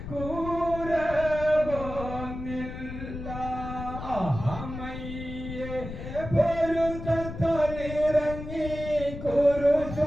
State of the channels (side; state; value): left; noise; rumble, 9 dB below the sound